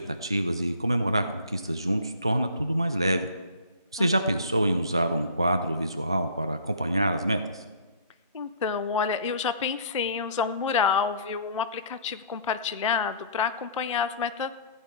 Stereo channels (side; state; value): both; inverted; correlation -0.51